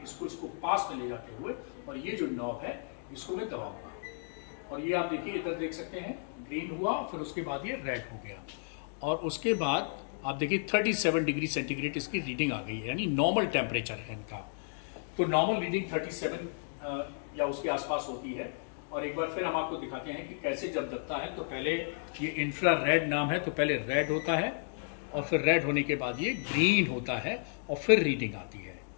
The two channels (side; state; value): right; silent; digital silence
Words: इसको पास में ले जाते हुए, और ये जो नॉब है इसको मैं दबाऊंगा, और ये आप देखिए इधर देख सकते हैं ग्रीन हुआ, फिर उसके बाद ये रेड हो गया, और उसके बाद आप देखिए 37 डिग्री सेंटीग्रेड इसकी रीडिंग आ गई है, यानी नॉर्मल टेम्परेचर है इनका। तो नॉर्मल रीडिंग 37 या उसके आसपास होती है। और एक बार फिर हम आपको दिखाते हैं कि कैसे जब दबता है तो पहले ये इंफ्रारेड नाम है, तो पहले रेड होता है और फिर रेड होने के बाद ये ग्रीन होता है और फिर रीडिंग आती है।